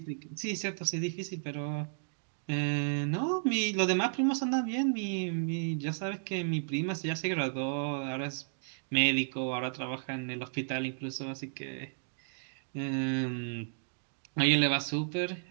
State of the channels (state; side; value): silent; left; digital silence